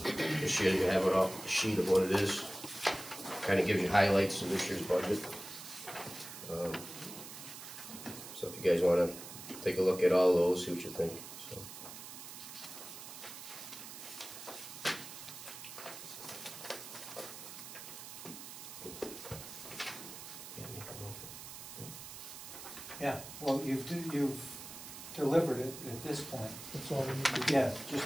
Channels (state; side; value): noise; right; hiss, 12 dB below the sound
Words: This year you have a sheet of what it is. Kind of gives you highlights of this year's budget. So if you guys want to take a look at all those, see what you think. So. Yeah, well, you've delivered it at this point. That's all we need to do. Yeah,